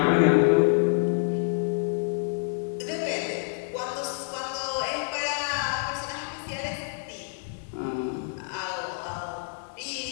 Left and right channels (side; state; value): right; silent; digital silence